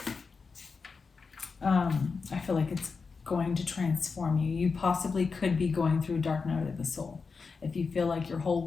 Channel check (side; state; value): right; quieter; 4.9 dB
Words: I feel like it's going to transform you. You possibly could be going through a dark night of the soul. If you feel like your whole